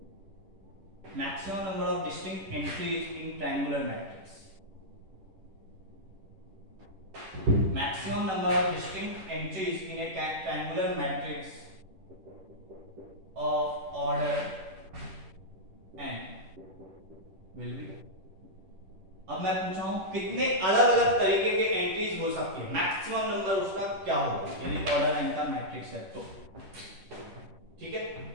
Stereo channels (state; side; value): late; left; 10 ms